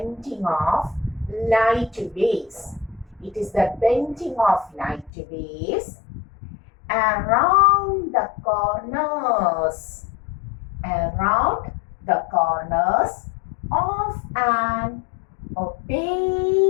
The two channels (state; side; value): drops out; right; at 5.1 s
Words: light waves. It is the bending of light waves around the corners of an